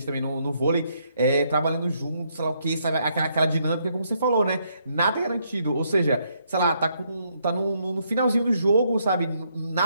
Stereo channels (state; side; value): inverted; both; correlation -0.74